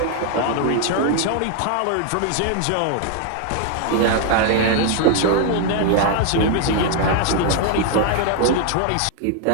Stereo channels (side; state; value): both; different; correlation 0.00